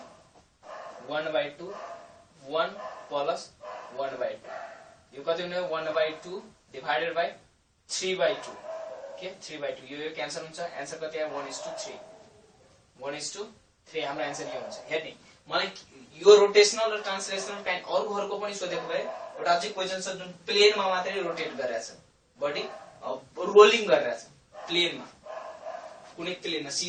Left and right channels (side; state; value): both; identical; correlation 1.00